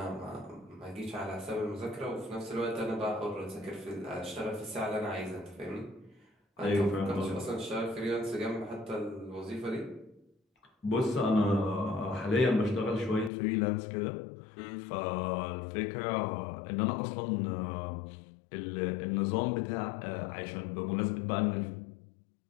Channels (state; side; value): drops out; right; at 13.3 s